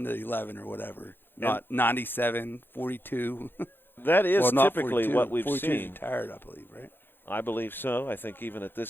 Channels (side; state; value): right; late; 0.10 ms